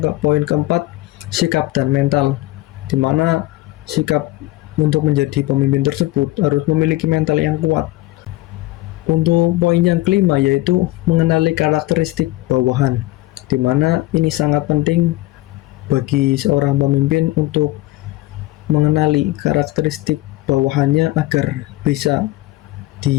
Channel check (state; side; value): quieter; right; 18.1 dB